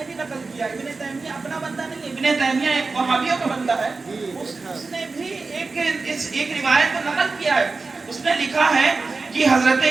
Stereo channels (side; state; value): left; quieter; 3.9 dB